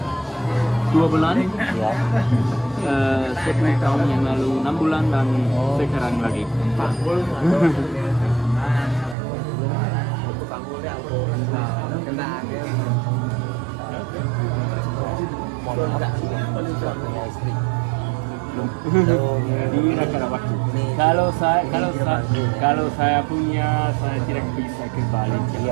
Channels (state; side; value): drops out; left; at 9.2 s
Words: 2 bulan. Ya. 10 tahun yang lalu 6 bulan dan sekarang lagi 4. Mohon maaf, suaminya istri. Ini karena waktu. Kalau saya punya, saya tidak bisa ke Bali.